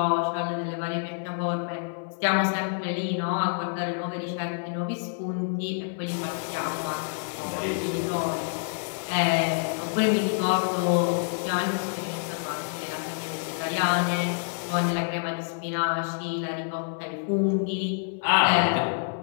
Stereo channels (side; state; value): right; silent; 60 dB below the other